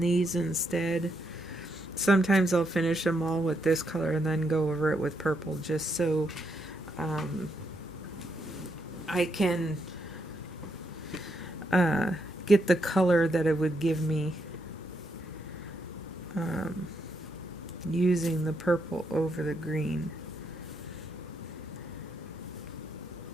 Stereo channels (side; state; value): both; normal; correlation 0.79